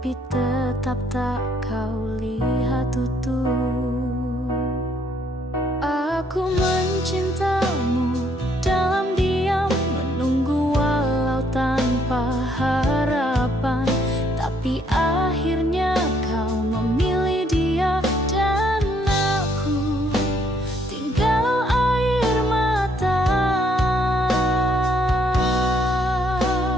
tetap tak kau lihat utuh. Aku mencintamu dalam diam, menunggu walau tanpa harapan, tapi akhirnya kau memilih dia dan aku tinggal air mata.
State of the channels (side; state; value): both; normal; correlation 0.68